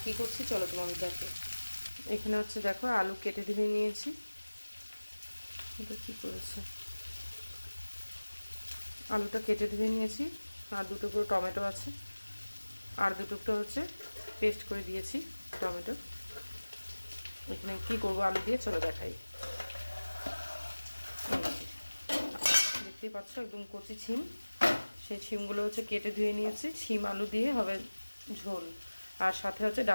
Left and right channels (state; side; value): inverted; both; correlation -1.00